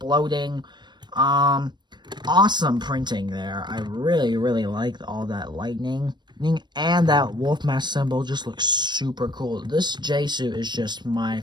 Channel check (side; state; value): left; late; 0.22 ms